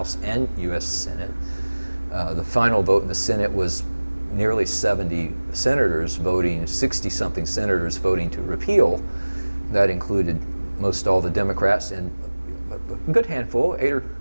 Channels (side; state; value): both; inverted; correlation -1.00